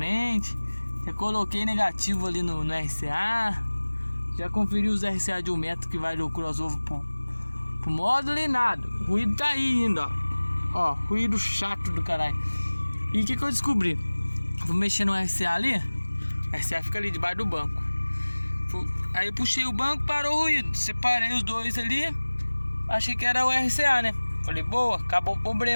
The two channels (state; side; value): inverted; both; correlation -1.00